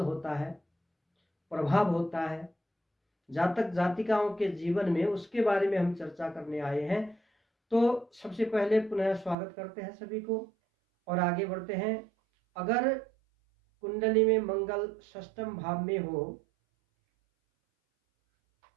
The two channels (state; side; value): drops out; left; at 9.3 s